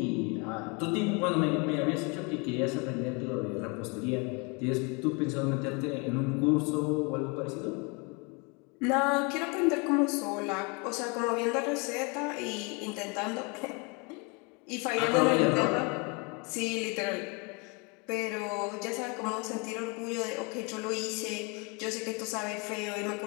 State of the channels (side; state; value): right; quieter; 31.2 dB